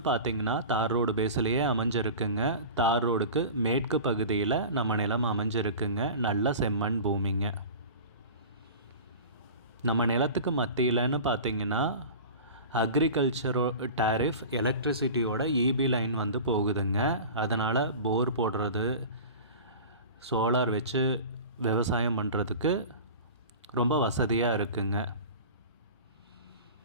பார்த்திங்கன்னா தார் ரோடு பேஸ்லேயே அமைஞ்சிருக்குங்க. தார் ரோடுக்கு மேற்கு பகுதியில் நம்ம நிலம் அமைஞ்சிருக்குங்க. நல்ல செம்மண் பூமிங்க. நம்ம நிலத்துக்கு மத்தியில்னு பார்த்திங்கன்னா அக்ரிகல்ச்சரோ டேரிஃப் எலக்ட்ரிசிட்டியோட இபி லைன் வந்து போகுதுங்க. அதனால் போர் போடுறது, சோலார் வச்சு விவசாயம் பண்ணுறதுக்கு ரொம்ப வசதியாக இருக்குங்க.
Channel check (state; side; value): inverted; both; correlation -0.36